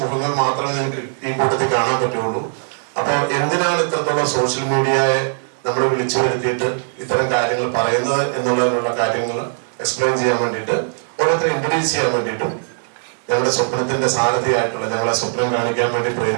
മുഖങ്ങൾ മാത്രമേ നിങ്ങൾക്ക് ഈ കൂട്ടത്തിൽ കാണാൻ പറ്റുള്ളൂ. അപ്പൊ എന്തിനാണ് ഇത്രത്തോളം സോഷ്യൽ മീഡിയയെ നമ്മൾ വിളിച്ചു വരുത്തിയിട്ട് ഇത്തരം കാര്യങ്ങൾ പറയുന്നത് എന്നുള്ളതിനുള്ള കാര്യങ്ങൾ എക്സ്പ്ലെയിൻ ചെയ്യാൻ വേണ്ടിയിട്ട്, ഓരോരുത്തരെ ഇൻട്രൊഡ്യൂസ് ചെയ്യാൻ വേണ്ടിയിട്ടും ഞങ്ങളുടെ സ്വപ്നത്തിന്റെ സാരഥിയായിട്ടുള്ള, ഞങ്ങളെ സ്വപ്നം കാണിക്കാൻ വേണ്ടി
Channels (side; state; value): left; silent; digital silence